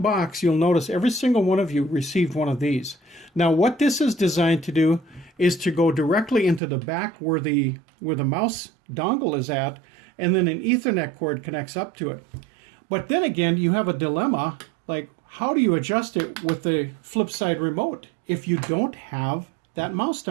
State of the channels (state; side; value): drops out; left; at 6.6 s